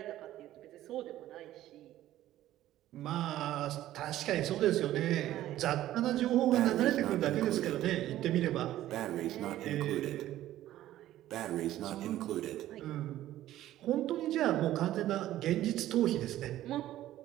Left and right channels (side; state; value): left; quieter; 13.8 dB